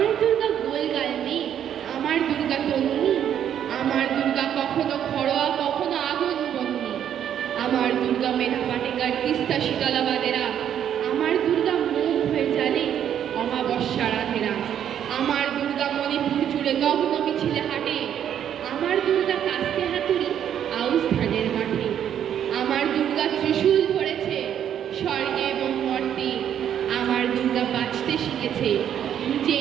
দুর্গা গোলগাল মেয়ে, আমার দুর্গা তন্নি। আমার দুর্গা কখনো খড়োয়া কখনো আগুন বন্যি। আমার দুর্গা মেধা পাটেকার তিস্তা শীতলাবাদেরা। আমার দুর্গা মুখ হয়ে জানে অমাবস্যা রাধেরা। আমার দুর্গা মণিপুর জুড়ে নগ্ন মিছিলে হাঁটে। আমার দুর্গা কাস্তে হাতুড়ি আউস ধানের মাঠে। আমার দুর্গা ত্রিশূল ধরেছে স্বর্গে এবং মর্তে। আমার দুর্গা বাঁচতে শিখেছে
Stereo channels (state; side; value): quieter; left; 9.6 dB